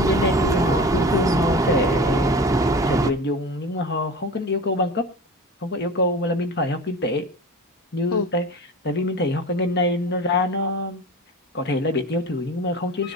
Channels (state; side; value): normal; both; correlation 0.33